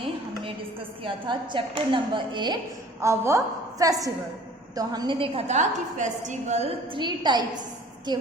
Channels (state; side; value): normal; both; correlation 0.49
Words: हमने discuss किया था चैप्टर नंबर 8, आवर फेस्टिवल. तो हमने देखा था कि फेस्टिवल 3 टाइप्स के